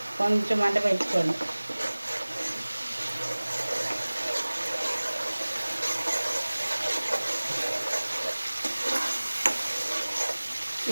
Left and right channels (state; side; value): inverted; both; correlation -1.00